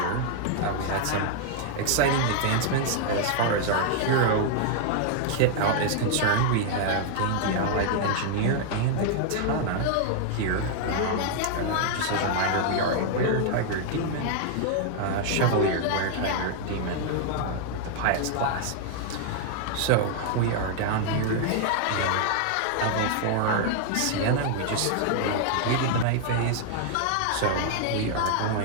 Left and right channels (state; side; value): different; both; correlation 0.00